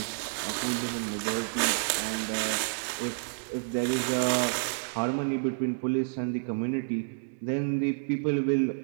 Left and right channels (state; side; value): silent; left; digital silence